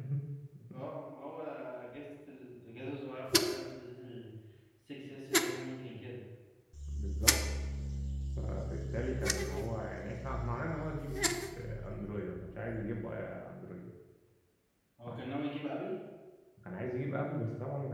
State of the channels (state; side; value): identical; both; correlation 1.00